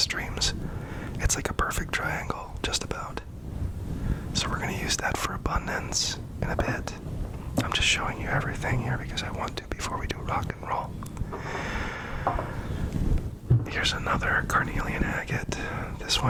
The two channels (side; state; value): both; identical; correlation 1.00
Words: It's like a perfect triangle, just about. So we're going to use that for abundance in a bit. I'm just showing you everything here because I want to before we do rock and roll. Here's another Carnelian Agate. This